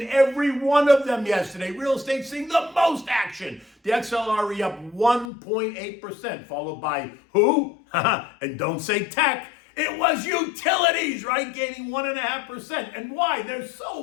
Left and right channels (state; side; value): drops out; right; at 5.3 s